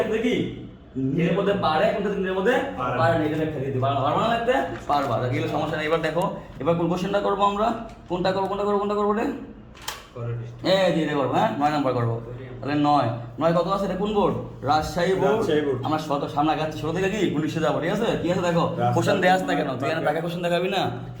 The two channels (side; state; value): both; identical; correlation 1.00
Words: কি নিজের মধ্যে পারে, কোন ক্ষেত্রে নিজের মধ্যে পারে না, এটা একটা দিতে পারবা, পারবা না লাগতে পারবা, তাহলে সমস্যা নেই। এবার দেখো এবার কোন কোশ্চেনটা করবো আমরা, কোনটা করবো রে? এই যে এটা করবো, হ্যাঁ 9 নাম্বার করবো। তাহলে 9 কত আছে, এটা কোন বোর্ড? রাজশাহী বোর্ড। আমরা শত সামনে আগাচ্ছি, ছোট থেকে কি 19 যাবো, ঠিক আছে? কি আছে দেখো, কোশ্চেন দেয়া আছে না কেন, তুই এখানে টাকা কোশ্চেন দেখাবি না,